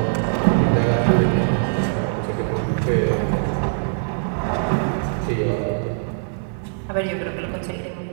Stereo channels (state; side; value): silent; left; digital silence